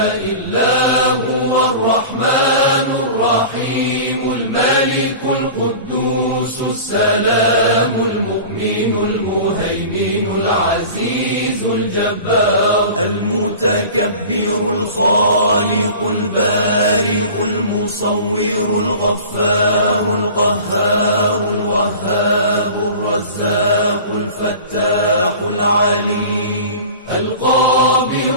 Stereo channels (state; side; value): inverted; both; correlation -0.38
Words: إلا هو الرحمن الرحيم الملك القدوس السلام المؤمن المهيمن العزيز الجبار المتكبر الخالق البارئ المصور الغفار القهار الوهاب الرزاق الفتاح العليم